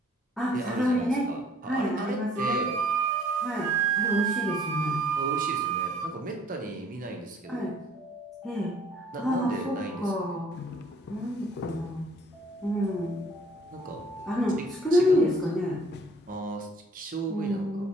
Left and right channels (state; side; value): normal; both; correlation 0.57